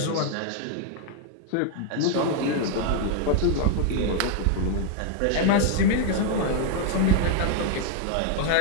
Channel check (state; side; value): different; both; correlation 0.00